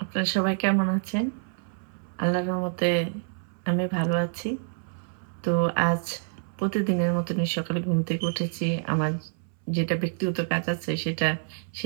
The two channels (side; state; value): left; silent; 60 dB below the other